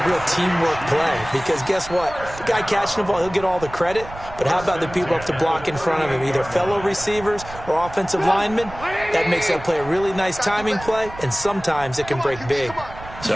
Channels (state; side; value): noise; right; rumble, 15 dB below the sound